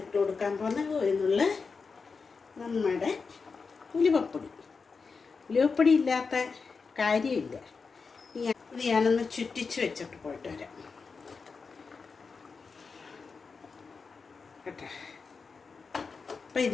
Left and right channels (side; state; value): right; quieter; 4.9 dB